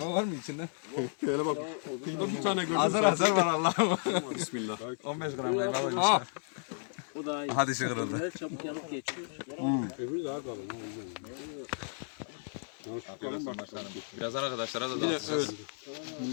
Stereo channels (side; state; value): right; silent; 56 dB below the other